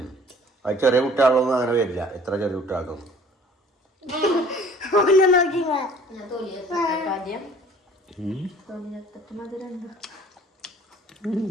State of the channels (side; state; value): both; normal; correlation 0.52